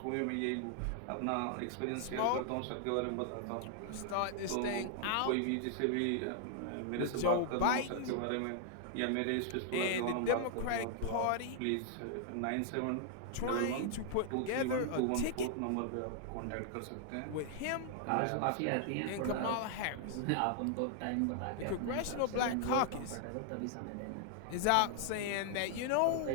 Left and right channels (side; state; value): both; different; correlation 0.00